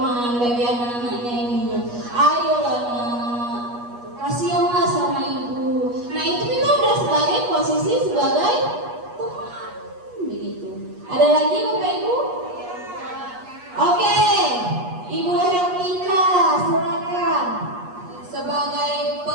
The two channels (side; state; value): left; late; 8.3 ms